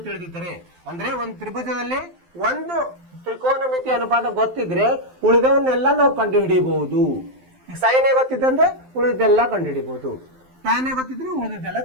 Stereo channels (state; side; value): late; left; 12 ms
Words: ತಿಳಿದಿದ್ದರೆ, ಅಂದ್ರೆ ಒಂದು ತ್ರಿಭುಜದಲ್ಲಿ ಒಂದು ತ್ರಿಕೋನ ಮಿತಿ ಅನುಪಾತ ಗೊತ್ತಿದ್ರೆ ಉಳಿದವನ್ನೆಲ್ಲ ನಾವು ಕಂಡು ಹಿಡಿಯಬಹುದು. ಸೈನ್ ಗೊತ್ತಿದ್ದಂದ್ರೆ ಉಳಿದೆಲ್ಲ ಕಂಡುಹಿಡಿಬಹುದು, ಟ್ಯಾನ್ ಗೊತ್ತಿದ್ರೆ ಉಳಿದೆಲ್ಲ